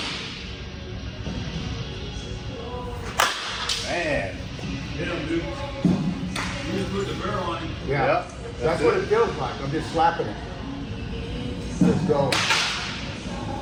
Man. Yeah, dude. You just put the barrel on. Yeah. Yep, That's what it feels like. I'm just slapping it. Let's go.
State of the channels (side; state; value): both; identical; correlation 1.00